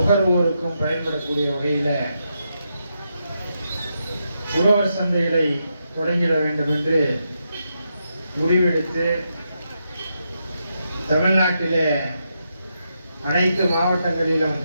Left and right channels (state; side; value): inverted; both; correlation -0.83